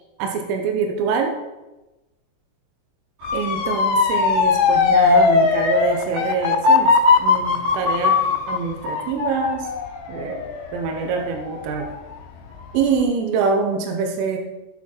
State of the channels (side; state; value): left; late; 24 ms